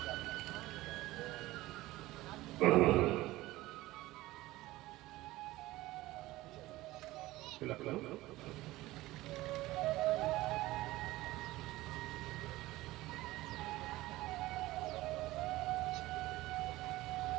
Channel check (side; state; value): left; quieter; 17.9 dB